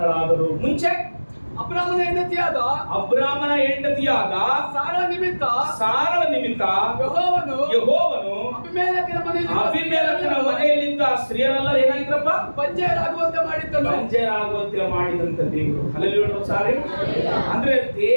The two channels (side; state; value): both; inverted; correlation -1.00